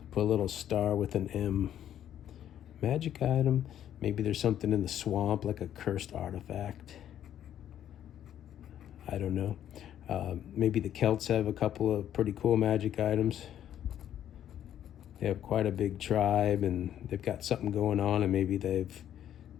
Put a little star with an M. Magic item. Maybe there's something in the swamp, like a cursed artifact. I don't know. Maybe the Celts have a couple of pretty cool magic items. They have quite a big tribe, and they've got something going on, and maybe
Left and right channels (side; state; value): right; quieter; 10.7 dB